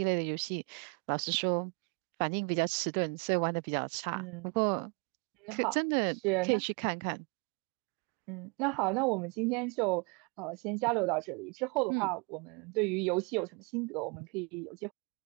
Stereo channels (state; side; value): quieter; left; 32.1 dB